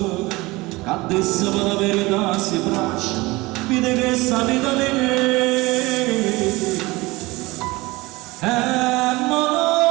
che adesso per la verità si braccia, vede che sta vita di me.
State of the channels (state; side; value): quieter; left; 21.8 dB